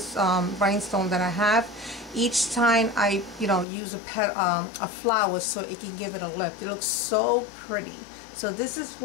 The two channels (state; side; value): drops out; right; at 3.7 s